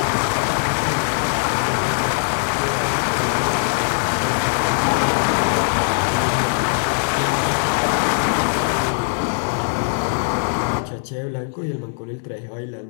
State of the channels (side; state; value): right; silent; digital silence